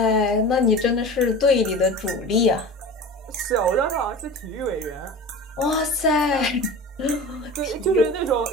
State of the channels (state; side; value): normal; both; correlation 0.34